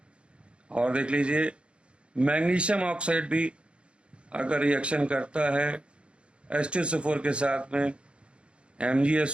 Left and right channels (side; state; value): left; late; 0.058 ms